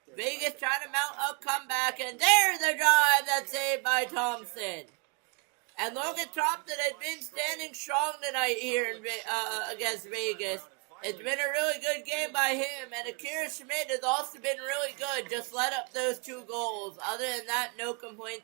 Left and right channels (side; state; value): left; quieter; 33.7 dB